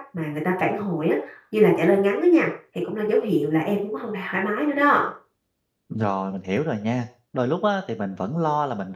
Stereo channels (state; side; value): identical; both; correlation 1.00